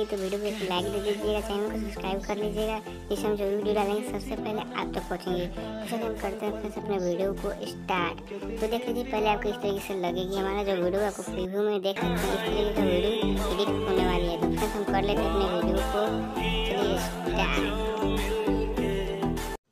तो वीडियो को एक लाइक दे दीजिएगा, चैनल को सब्सक्राइब कर लीजिएगा, जिससे हम जो भी वीडियो डालेंगे सबसे पहले आप तक पहुँचेंगे। तो चलिए हम करते हैं फ्रेंड्स अपने वीडियो को स्टार्ट। तो देख लीजिए पहले आपको इस तरीके से लगेगी हमारा जो वीडियो, आपको प्रीव्यू में देख सकते हैं इस तरीके का वीडियो एडिट होने वाली है। तो फ्रेंड्स हम कर लेते हैं अपने वीडियो को, चलिए स्टार्ट।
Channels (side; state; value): both; identical; correlation 1.00